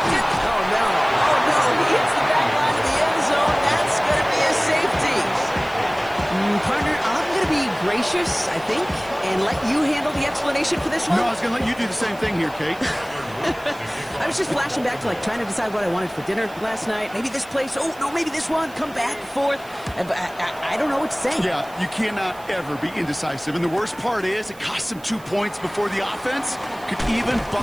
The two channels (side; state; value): right; noise; hiss, 23 dB below the sound